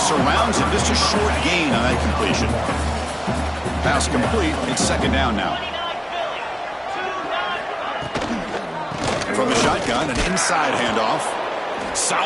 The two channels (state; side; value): identical; both; correlation 1.00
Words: surrounds him, just a short gain on that completion. Pass complete, it's 2nd down now. From the shotgun, an inside handoff.